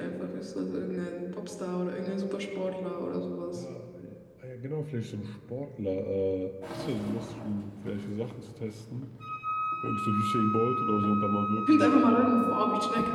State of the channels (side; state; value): both; identical; correlation 1.00